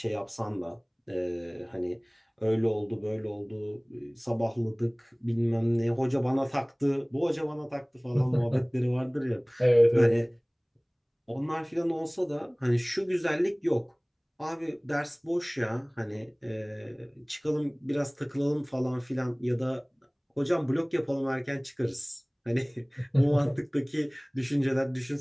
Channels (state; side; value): identical; both; correlation 1.00